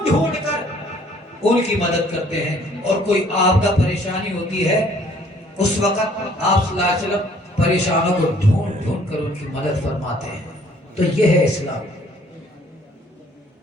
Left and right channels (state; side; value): normal; both; correlation 0.59